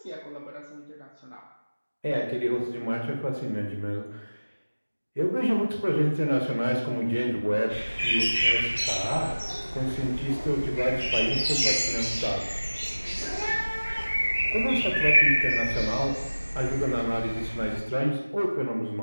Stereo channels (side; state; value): both; inverted; correlation -1.00